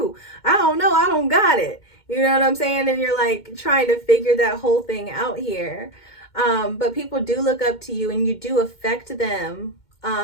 I don't know, I don't got it, you know what I'm saying? And you're like trying to figure that whole thing out here. But people do look up to you and you do affect them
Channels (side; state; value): right; late; 2.2 ms